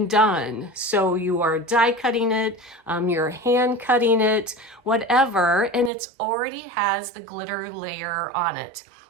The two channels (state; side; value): drops out; left; at 5.9 s